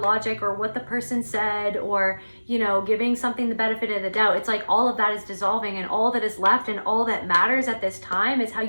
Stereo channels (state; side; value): inverted; both; correlation -1.00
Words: logic or what the person said, or you know, giving something the benefit of the doubt. It's like all of that is dissolving, and all that is left and all that matters at this time is how